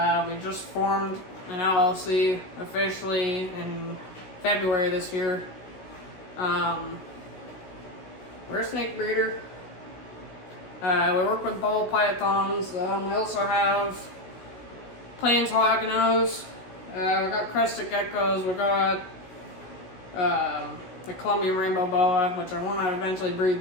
We just formed an LLC officially in February this year. We're a snake breeder. We work with ball pythons. We also have plains hognose. We got crested geckos. We got the Colombian rainbow boa, which I want to eventually breed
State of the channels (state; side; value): late; right; 16 ms